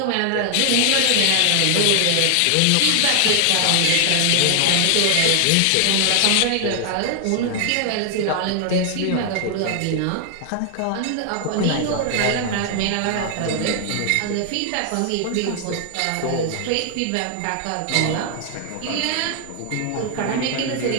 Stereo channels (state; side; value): different; both; correlation 0.00